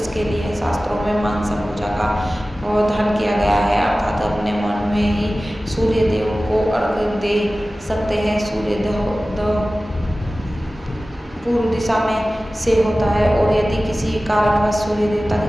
लिए शास्त्रों में मानसा पूजा का प्रावधान किया गया है, अर्थात अपने मन में ही सूर्यदेव को अर्घ दे सकते हैं। सूर्योदय पूर्व दिशा में से होता है और यदि किसी कारणवश सूर्य देवता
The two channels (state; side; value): normal; both; correlation 0.96